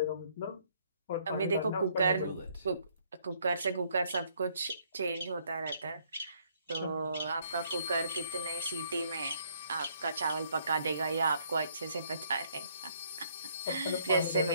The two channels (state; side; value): inverted; both; correlation -0.67